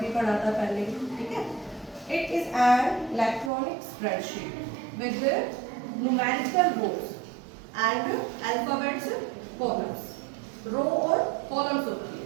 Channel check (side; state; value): left; drops out; at 3.5 s